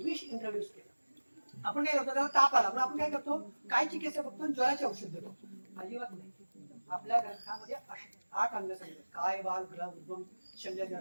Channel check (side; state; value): both; inverted; correlation -1.00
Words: इंट्रोड्यूस केलं. आपण काय करतो, त्याला ताप आला म्हणून आपण काय करतो, काय चिकित्सा फक्त ज्वराचे औषध देतो? अजिबात नाही. आपल्या ग्रंथामध्ये 8 अंग सांगितले, काय, बाल, ग्रह, उद्गम, शल्य,